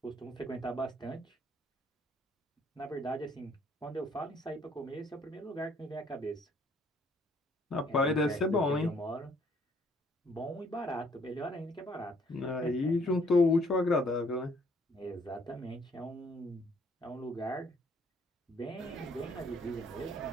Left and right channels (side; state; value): both; normal; correlation 0.64